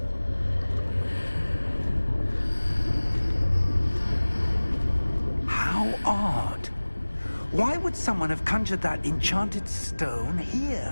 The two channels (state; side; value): inverted; both; correlation -1.00